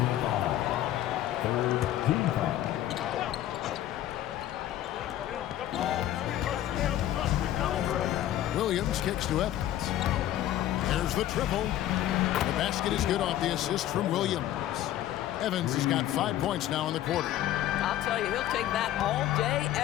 foul. Third team foul. Williams kicks to Evans. There's the triple. The basket is good off the assist from Williams. Evans has got 5 points now in the quarter. I'll tell you, he'll take that all day,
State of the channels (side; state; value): right; quieter; 12.9 dB